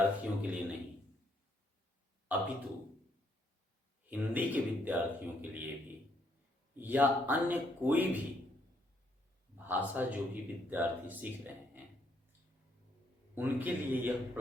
के लिए नहीं, अपितु हिंदी के विद्यार्थियों के लिए भी या अन्य कोई भी भाषा जो भी विद्यार्थी सीख रहे हैं उनके लिए यह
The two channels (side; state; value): both; normal; correlation 0.72